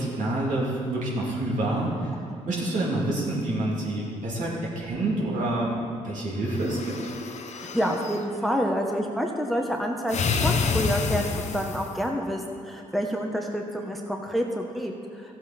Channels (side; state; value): both; normal; correlation 0.69